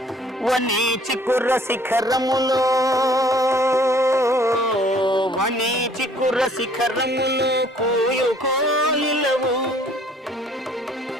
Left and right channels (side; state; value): both; normal; correlation 0.58